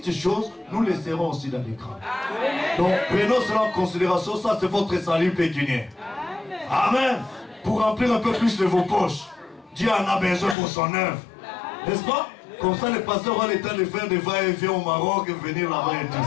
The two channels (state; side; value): drops out; right; at 10.6 s